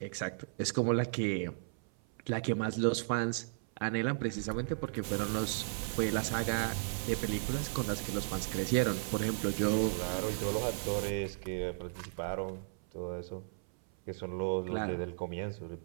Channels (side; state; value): left; silent; 54 dB below the other